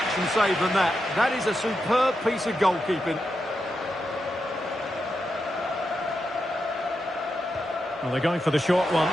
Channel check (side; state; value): both; normal; correlation 0.87